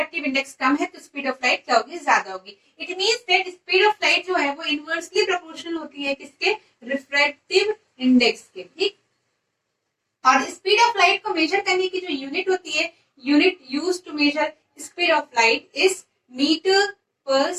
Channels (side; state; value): both; identical; correlation 1.00